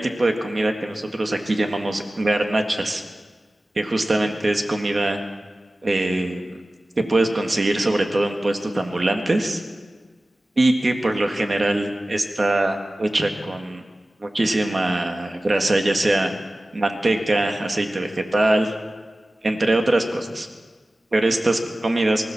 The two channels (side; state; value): both; normal; correlation 0.96